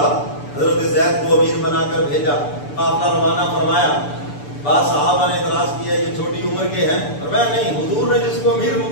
حضرت زید کو امیر بنا کر بھیجا، قافلہ روانہ فرمایا. بعض صحابہ نے اعتراض کیا یہ چھوٹی عمر کے ہیں، اور میں نہیں، حضور نے جس کو امیر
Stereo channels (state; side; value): late; right; 6.9 ms